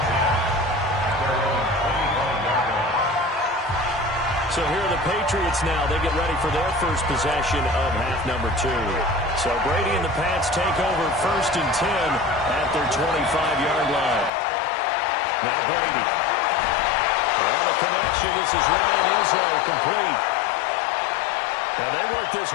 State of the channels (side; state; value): right; drops out; at 14.3 s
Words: So here are the Patriots now. They get ready for their first possession of half number 2. So Brady and the Pats take over 1st and 10 at their 25-yard line. Now Brady. Well, the connection. This is Ryan Izzo, complete. And they work this